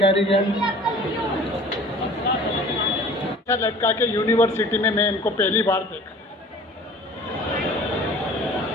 लड़का के यूनिवर्सिटी में मैं इनको पहली बार देखा।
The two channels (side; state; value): both; normal; correlation 0.46